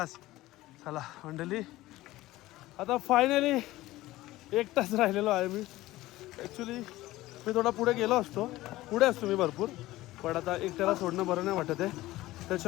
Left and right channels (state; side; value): quieter; right; 17.2 dB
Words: चला मंडळी आता फायनली एकटाच राहिलेलो आहे मी. ॲक्च्युली मी थोडा पुढे गेलो असतो. पुढे असतो मी भरपूर. पण आता एकट्याला सोडणं बरं नाही वाटत आहे.